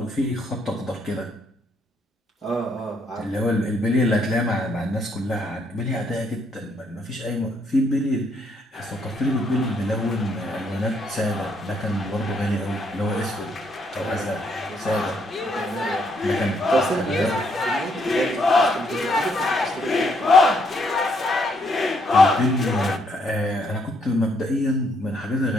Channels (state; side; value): normal; both; correlation 0.72